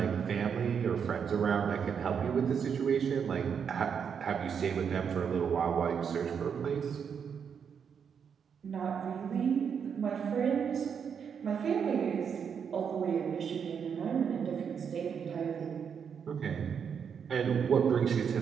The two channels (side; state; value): left; quieter; 7.1 dB